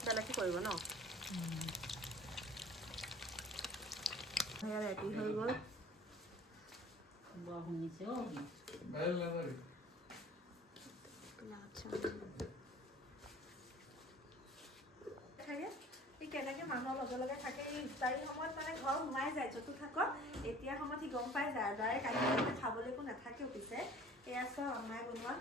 বেলেগকৈ কৰিব ন, ৰেডি হৈ গ'ল। কেনেকৈ মানুহৰ লগে থাকে, এই ইফতাৰী সময়ত মানে ঘৰ সোমাই যায়, য'তো থাকক এতিয়া সময়ত সি গম পাই যায়, ডাইৰেক্ট আহি খাবলৈ একো নাথাকেও। পিছে এয়া চাওঁ আমাই বনোৱা,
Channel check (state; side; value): normal; both; correlation 0.47